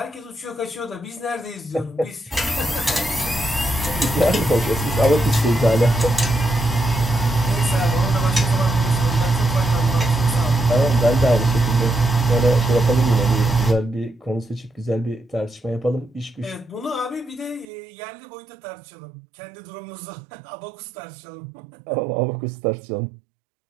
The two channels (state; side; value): drops out; left; at 17.7 s